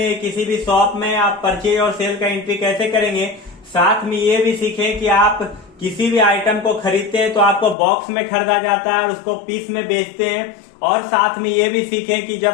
किसी भी शॉप में आप परचेज और सेल का एंट्री कैसे करेंगे। साथ में ये भी सीखे कि आप किसी भी आइटम को खरीदते हैं तो आपको बॉक्स में खरीदा जाता है और उसको पीस में बेचते हैं। और साथ में ये भी सीखें कि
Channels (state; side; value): drops out; right; at 7.8 s